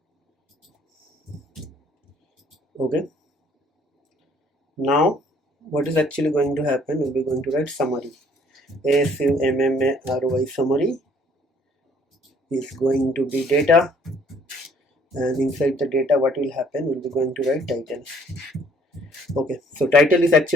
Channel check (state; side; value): normal; both; correlation 0.60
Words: Okay, now what is actually going to happen, we'll be going to write summary. SUMMARY, summary is going to be data, and inside the data what will happen, we'll be going to write title. Okay, so title is